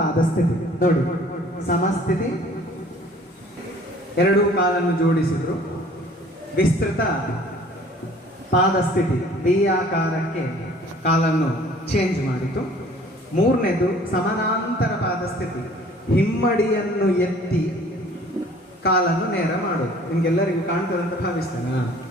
ಸ್ಥಿತಿ. ನೋಡಿ, ಸಮಸ್ಥಿತಿ, ಎರಡೂ ಕಾಲನ್ನು ಜೋಡಿಸಿದ್ರು. ವಿಸ್ತೃತ ಪಾದ ಸ್ಥಿತಿ, ವಿ ಆಕಾರಕ್ಕೆ ಕಾಲನ್ನು ಚೇಂಜ್ ಮಾಡಿತು. ಮೂರನೇದು ಸಮಾನಾಂತರ ಪಾದ ಸ್ಥಿತಿ, ಹಿಮ್ಮಡಿಯನ್ನು ಎತ್ತಿ ಕಾಲನ್ನು ನೇರ ಮಾಡೋದು. ನಿಮ್ಗೆಲ್ಲರಿಗೂ ಕಾಣ್ತದೆ ಅಂತ ಭಾವಿಸ್ತೇನೆ.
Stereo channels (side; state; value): both; normal; correlation 0.52